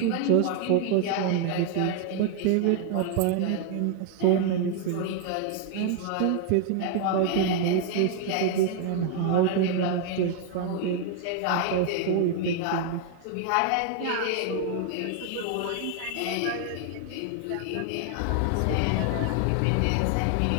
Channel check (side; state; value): both; different; correlation 0.00